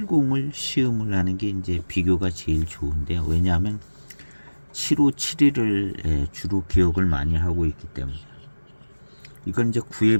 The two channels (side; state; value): both; inverted; correlation -1.00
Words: 시음을 하는 게 이제 비교가 제일 좋은데요. 왜냐하면 7571을 주로 기억을 많이 하고 있기 때문에. 이건 이제 구의